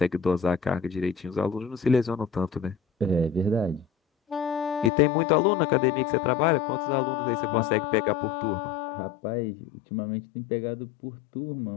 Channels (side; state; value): right; drops out; at 4.9 s